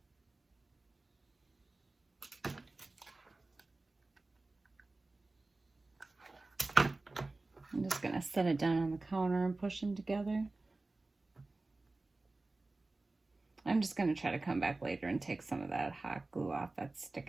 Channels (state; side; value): quieter; left; 3.2 dB